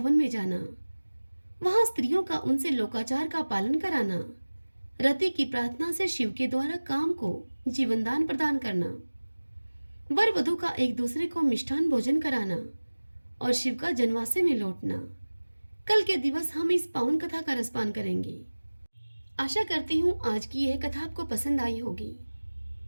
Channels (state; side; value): inverted; both; correlation -1.00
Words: में जाना, वहां स्त्रियों का उनसे लोकाचार का पालन कराना, रति की प्रार्थना से शिव के द्वारा काम को जीवनदान प्रदान करना, वर वधू का एक दूसरे को मिष्ठान भोजन कराना और शिव का जनवासे में लौटना। कल के दिवस हम इस पावन कथा का रसपान करेंगे। आशा करती हूँ आज की यह कथा आपको पसंद आई होगी।